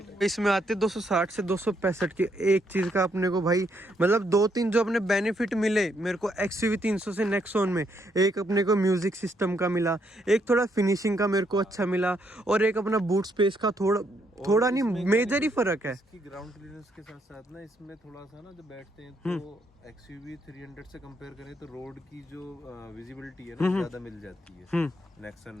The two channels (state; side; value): normal; both; correlation 0.74